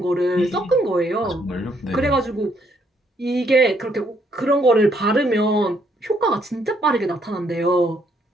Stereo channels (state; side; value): normal; both; correlation 0.70